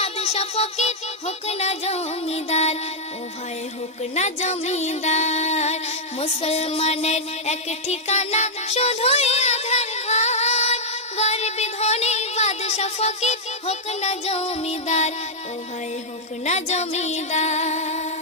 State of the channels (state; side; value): normal; both; correlation -0.05